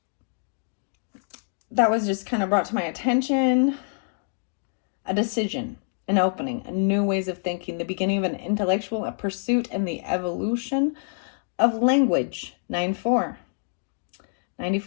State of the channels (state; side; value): silent; right; digital silence